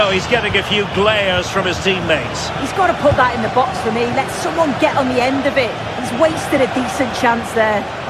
he's getting a few glares from his teammates. He's got to put that in the box for me. Let someone get on the end of it. He's wasted a decent chance there.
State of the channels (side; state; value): both; identical; correlation 1.00